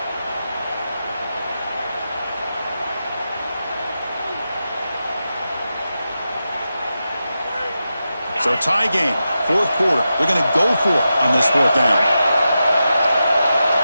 So tie game, fourth quarter. They're going to go for it on this fourth down.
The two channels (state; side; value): inverted; both; correlation -0.90